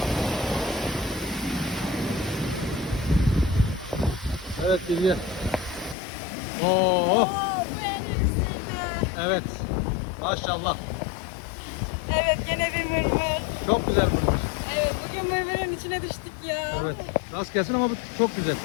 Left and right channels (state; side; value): drops out; right; at 6.0 s